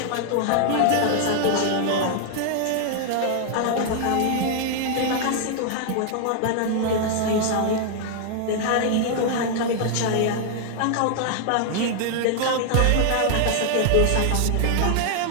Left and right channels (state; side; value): different; both; correlation 0.00